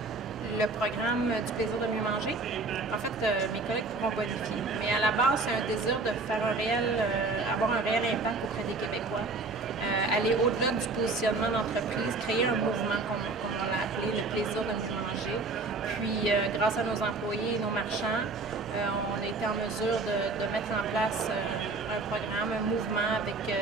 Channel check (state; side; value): quieter; left; 3.7 dB